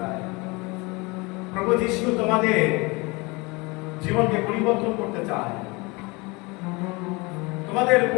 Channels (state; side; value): quieter; right; 26.0 dB